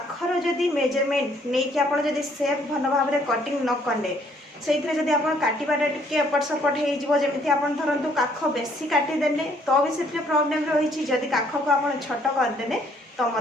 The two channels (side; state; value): both; normal; correlation 0.65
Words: जदि मेजरमेंट नै कि आपण जदि शेप भल भाव रे कटिंग न करले सेइथरे जदि आपण काटिबाटा टिके एपट सपट हे जिवो, जेमिति आपण धरंतु काख बेसी काटी देले तो भी सेथरे प्रॉब्लम रहिछि, जदि काख को आपण छोट कर देले तो